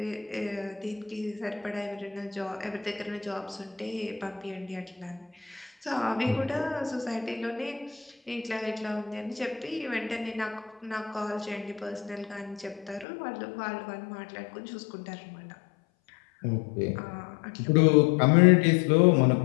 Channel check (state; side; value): drops out; right; at 13.1 s